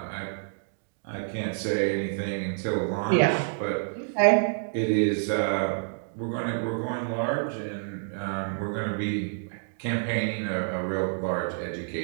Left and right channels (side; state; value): left; silent; digital silence